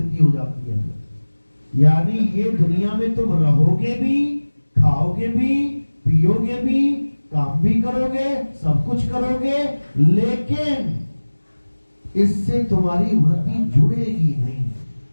हो जाती है। यानी ये दुनिया में तुम रहोगे भी, खाओगे भी, पियोगे भी, काम भी करोगे, सब कुछ करोगे, लेकिन इससे तुम्हारी वृत्ति जुड़ेगी नहीं,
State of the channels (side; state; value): both; inverted; correlation -1.00